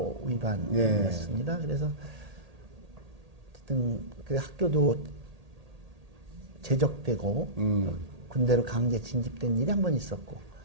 위반이었습니다. 그래서 어쨌든 그 학교도 제적되고 군대로 강제 진집된 일이 한 번 있었고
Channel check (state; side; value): late; left; 1.8 ms